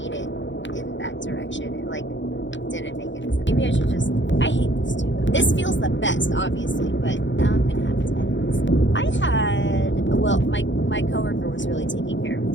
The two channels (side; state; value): right; late; 0.54 ms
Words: it in that direction. It didn't make any sense. Maybe maybe I should just, I hate this too though. This feels the best, obviously, but now I'm gonna have to edit this. I had, well, my coworker was really taking care of